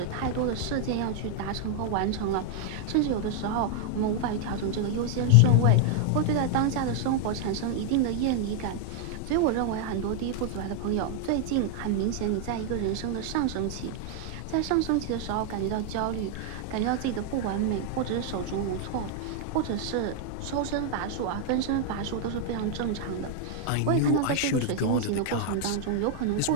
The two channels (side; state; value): both; different; correlation 0.00